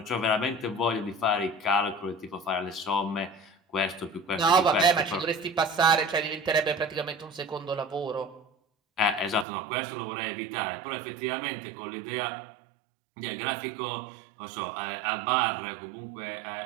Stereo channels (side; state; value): left; drops out; at 9.5 s